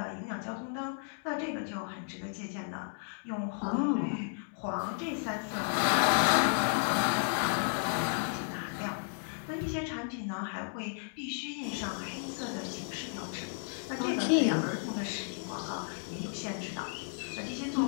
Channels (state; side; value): silent; right; 55 dB below the other